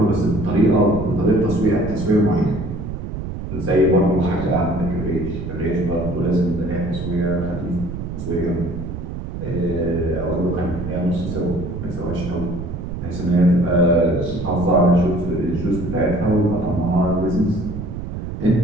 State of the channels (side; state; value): right; noise; rumble, 7 dB below the sound